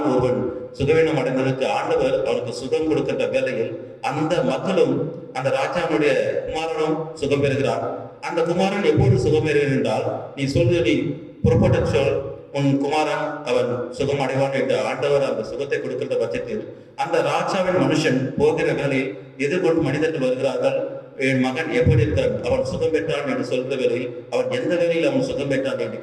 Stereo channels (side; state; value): both; identical; correlation 1.00